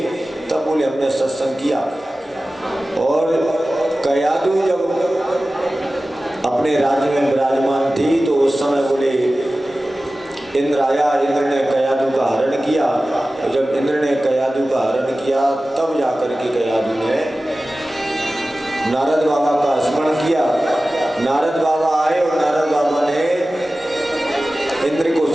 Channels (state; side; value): normal; both; correlation 0.96